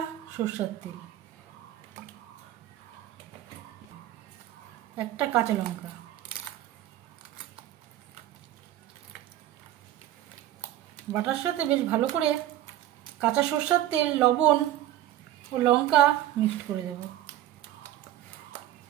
সরষের তেল, একটা কাঁচা লঙ্কা। বাটার সাথে বেশ ভালো করে কাঁচা সরষের তেল, লবণ ও লঙ্কা মিক্সড করে দেব।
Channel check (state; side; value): quieter; left; 13.3 dB